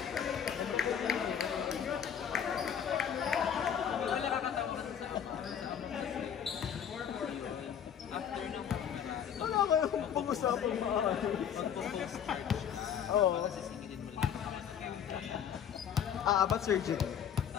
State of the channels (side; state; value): right; quieter; 8.5 dB